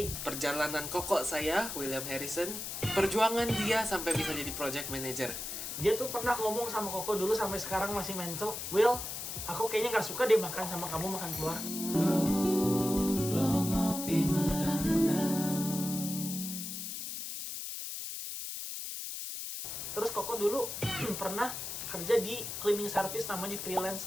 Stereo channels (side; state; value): left; noise; hiss, 6 dB below the sound